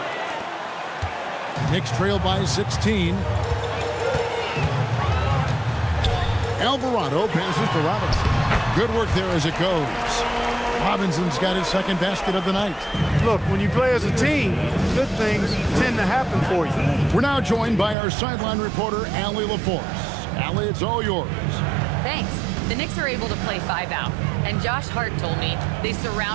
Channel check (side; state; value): left; drops out; at 17.9 s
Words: Knicks trail by 16. Alvarado passes to Robinson. Good work there as it goes. Robinson's got his 2nd basket of the night. Look, when you play as a team, good things tend to happen for you. We're now joined by our sideline reporter, Allie LaForce. Allie, it's all yours. Thanks. The Knicks are able to play 5 out. And Josh Hart told me they